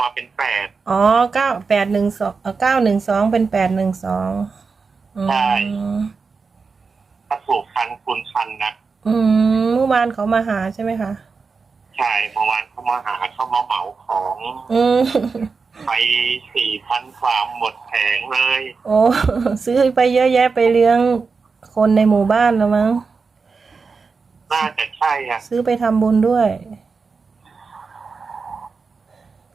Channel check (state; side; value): quieter; left; 4.8 dB